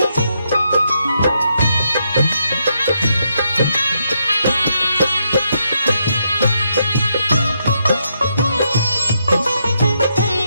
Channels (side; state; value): both; inverted; correlation -0.79